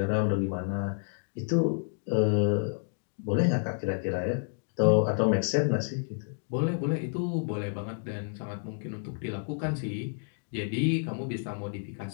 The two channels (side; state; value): right; silent; digital silence